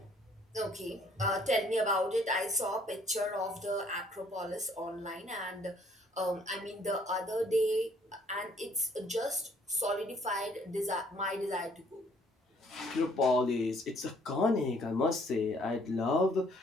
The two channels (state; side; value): normal; both; correlation 0.62